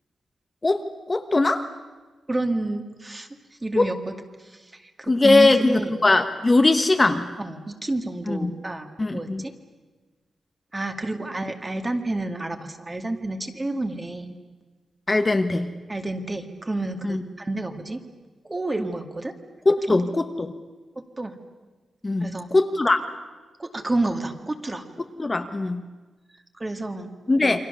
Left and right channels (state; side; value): normal; both; correlation 0.96